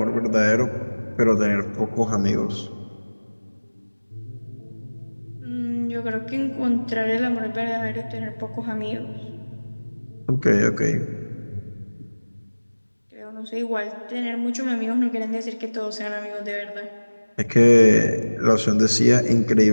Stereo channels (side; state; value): both; inverted; correlation -1.00